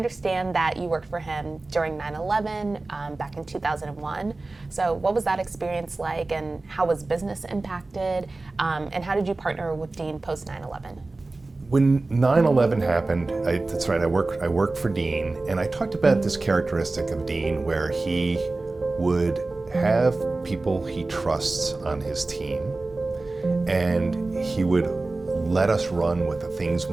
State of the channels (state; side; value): quieter; left; 3.3 dB